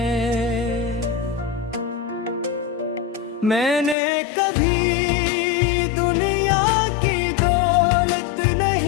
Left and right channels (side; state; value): right; drops out; at 4.0 s